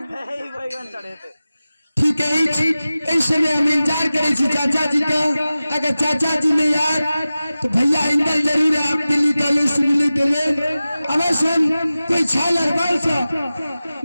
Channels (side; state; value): both; inverted; correlation -0.95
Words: चढ़ेते ठीक है ऐसे में हम इंतजार करे छी चाचा जी का अगर चाचा जी नहीं आए तो भैया इंदल जरूर है आप दिल्ली कॉलेज से मिली के लिए अवश्य कोई छालर वर्ष